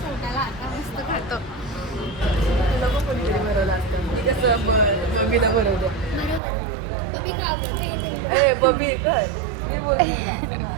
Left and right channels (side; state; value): left; drops out; at 6.4 s